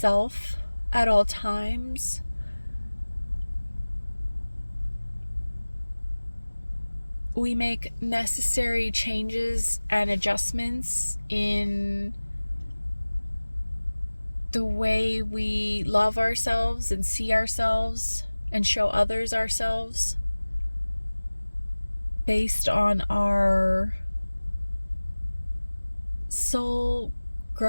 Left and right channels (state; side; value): inverted; both; correlation -1.00